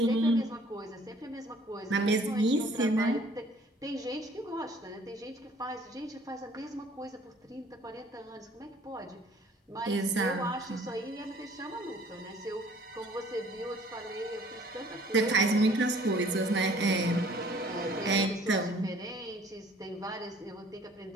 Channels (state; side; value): normal; both; correlation 0.55